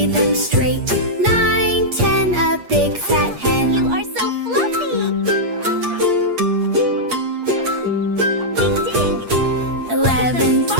them straight. 9, 10, a big fat hen. You are so fluffy! Ding ding! 11,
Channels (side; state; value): left; late; 8.5 ms